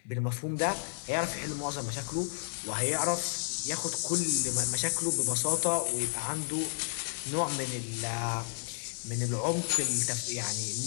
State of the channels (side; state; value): right; silent; 56 dB below the other